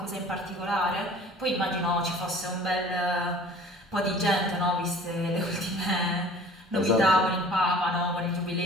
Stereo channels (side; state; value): both; normal; correlation 0.47